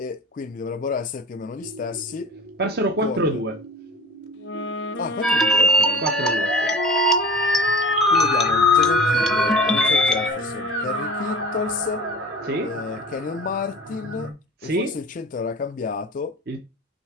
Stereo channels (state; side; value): normal; both; correlation 0.38